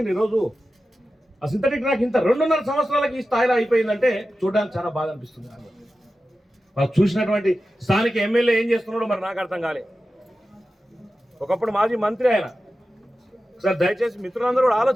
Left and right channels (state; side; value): normal; both; correlation 0.93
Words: ఈరోజు ఆ సింథటిక్ ట్రాక్ ఇంత 2.5 సంవత్సరాలకి ఈ స్థాయిలో అయిపోయిందంటే చూడడానికి చాలా బాధ అనిపిస్తుంది. వాళ్ళు చూసినటువంటి స్థానిక ఎమ్మెల్యే ఏం చేస్తున్నాడో మరి నాకు అర్థం కాలే. ఒకప్పుడు మాజీ మంత్రి ఆయన. ఒకసారి దయచేసి మిత్రులందరూ కూడా